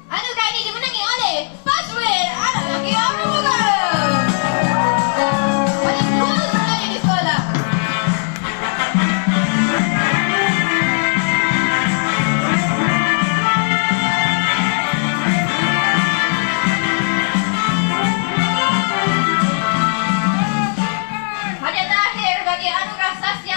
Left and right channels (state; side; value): silent; right; 64 dB below the other